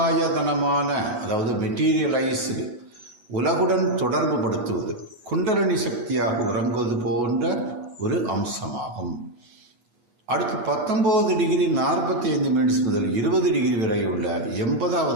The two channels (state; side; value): late; left; 8.3 ms